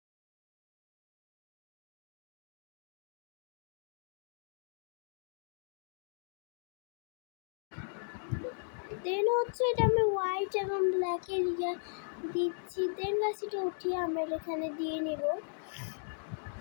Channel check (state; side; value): silent; right; digital silence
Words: দেন হচ্ছে এটা আমি হোয়াইট এবং ব্ল্যাকের দিচ্ছি। দেন গাছ এটা উঠিয়ে আমরা এখানে দিয়ে নিব।